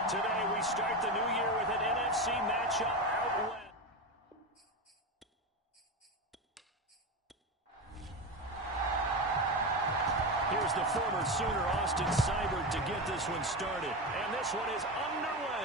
Today we start the new year with an NFC matchup out west. Here's the former Sooner Austin Seibert to get this one started. And this one is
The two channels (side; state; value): both; normal; correlation 0.18